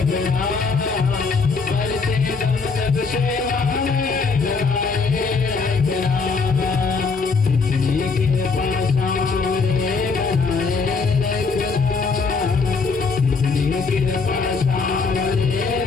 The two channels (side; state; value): right; quieter; 4.7 dB